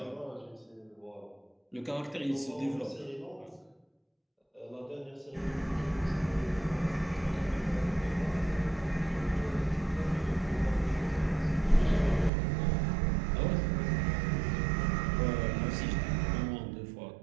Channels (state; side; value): drops out; left; at 12.3 s